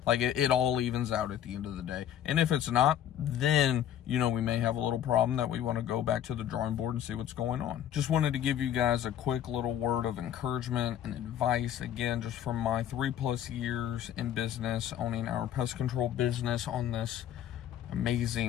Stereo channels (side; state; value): right; quieter; 10.6 dB